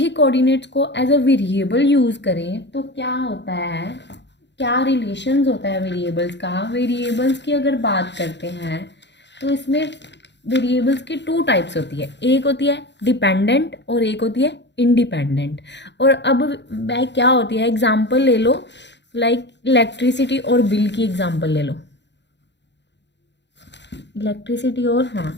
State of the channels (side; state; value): right; late; 0.51 ms